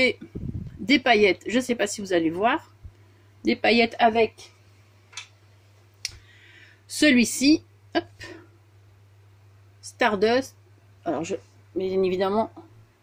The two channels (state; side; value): identical; both; correlation 1.00